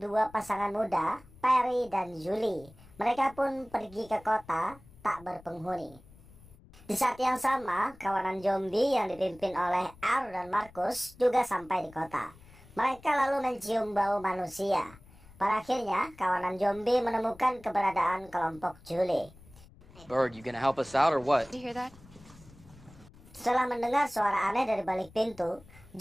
dua pasangan muda, Perry dan Julie. Mereka pun pergi ke kota tak berpenghuni. Di saat yang sama, kawanan zombie yang dipimpin oleh R dan Marcus juga sampai di kota. Mereka lalu mencium bau manusia. Pada akhirnya, kawanan zombie menemukan keberadaan kelompok Julie. Bird, you gonna help us out or what? Did you hear that? Setelah mendengar suara aneh dari balik pintu,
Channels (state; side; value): noise; left; rumble, 23 dB below the sound